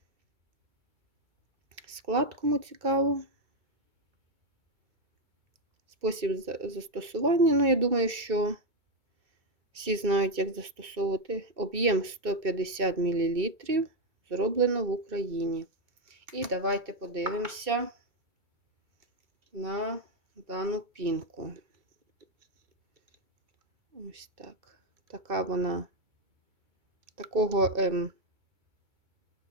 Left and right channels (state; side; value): late; left; 2.2 ms